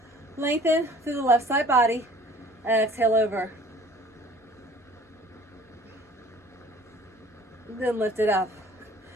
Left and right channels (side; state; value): both; normal; correlation 0.50